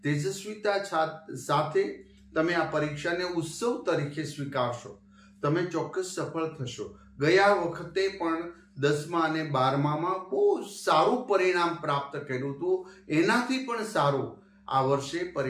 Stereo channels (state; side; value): identical; both; correlation 1.00